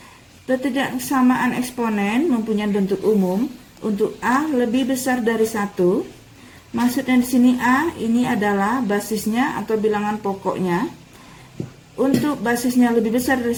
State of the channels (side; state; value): both; identical; correlation 1.00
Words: Pertidaksamaan eksponen mempunyai bentuk umum untuk A lebih besar dari 1. Maksudnya di sini A ini adalah basisnya atau bilangan pokoknya. Untuk basisnya lebih besar dari